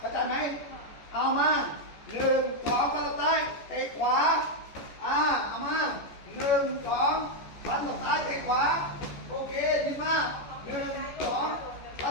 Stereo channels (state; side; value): late; right; 14 ms